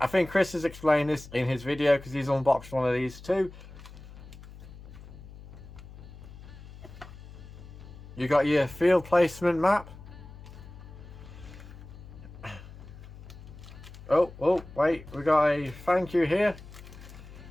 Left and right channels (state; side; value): noise; left; hum, 16 dB below the sound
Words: think Chris has explained this in his video, because he's unboxed one of these too. You got your field placement map. Oh, wait, we got a thank you here.